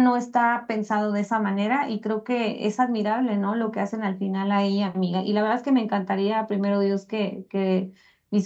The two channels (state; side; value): identical; both; correlation 1.00